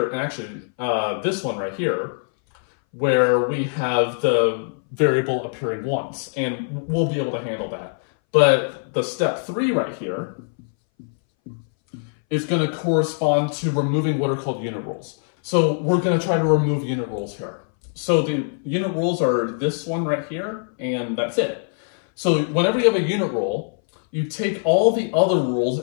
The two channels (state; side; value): silent; right; 62 dB below the other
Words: and actually this one right here, where we have the variable appearing once, and we'll be able to handle that. But the step 3 right here is going to correspond to removing what are called unit rules. So we're going to try to remove unit rules here. So the unit rules are this one right here, and that's it. So whenever you have a unit rule, you take all the other rules